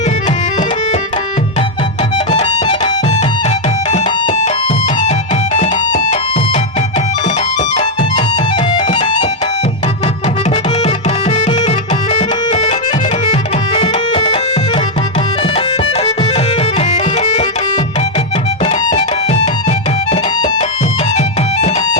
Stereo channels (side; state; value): both; normal; correlation 0.00